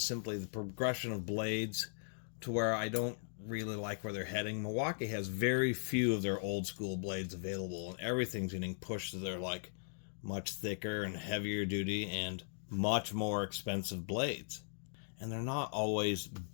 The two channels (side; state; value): right; silent; digital silence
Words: simply the progression of blades to where I don't really like where they're heading. Milwaukee has very few of their old school blades available, and everything's getting pushed to their much thicker and heavier duty and much more expensive blades. And they're not always